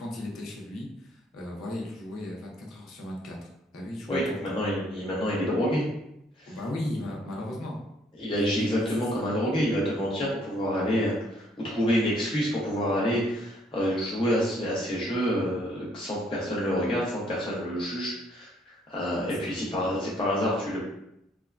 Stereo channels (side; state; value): both; normal; correlation 0.65